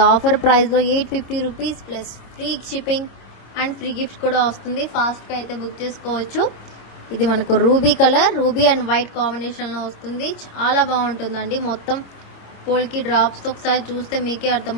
ఆఫర్ ప్రైస్లో 850 rupees plus free shipping and free gift కూడా వస్తుంది. ఫాస్ట్గా అయితే బుక్ చేసుకోవచ్చు. ఇది మనకు ruby colour, ruby and white కాంబినేషన్లో వస్తుంది. చాలా బాగుంటుందండి. మొత్తం పోల్కి డ్రాప్స్తో ఒకసారి చూస్తే మీకే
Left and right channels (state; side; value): late; right; 26 ms